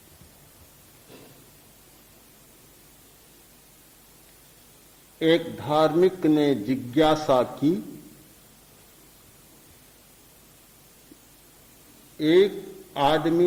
एक धार्मिक ने जिज्ञासा की, एक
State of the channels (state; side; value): identical; both; correlation 1.00